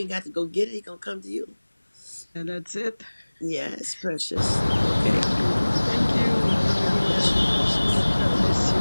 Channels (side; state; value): both; inverted; correlation -1.00